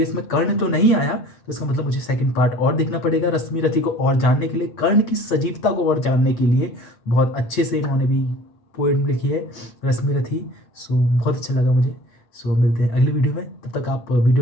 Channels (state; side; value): late; right; 8.8 ms